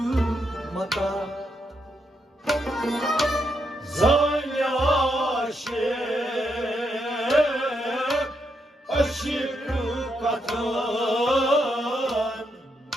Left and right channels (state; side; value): normal; both; correlation 0.80